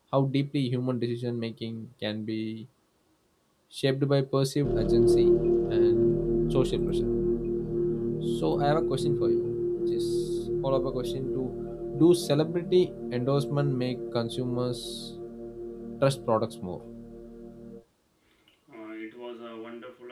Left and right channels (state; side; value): identical; both; correlation 1.00